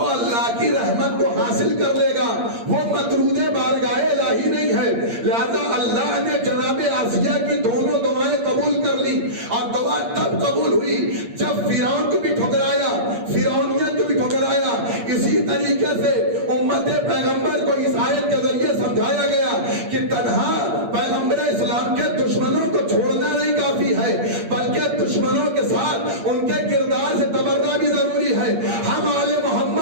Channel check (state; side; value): late; left; 8.6 ms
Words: اللہ کی رحمت کو حاصل کر لے گا وہ مطرود بارگاہ الہی نہیں ہے۔ لہذا اللہ نے جناب آسیہ کی دونوں دعائیں قبول کر لی، اور دعا تب قبول ہوئی جب فرعون کو بھی ٹھکرایا، فرعونیت کو بھی ٹھکرایا۔ اسی طریقے سے امت پیغمبر کو اس آیت کے ذریعے سمجھایا گیا کہ تنہا پیغمبر اسلام کے دشمنوں کو چھوڑنا نہیں کافی ہے، بلکہ دشمنوں کے ساتھ ان کے کردار سے تبرہ بھی ضروری ہے۔ ہم آل